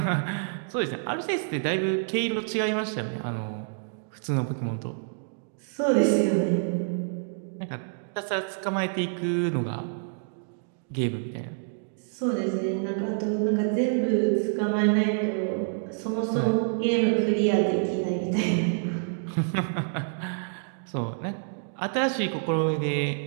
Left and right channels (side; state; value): left; silent; digital silence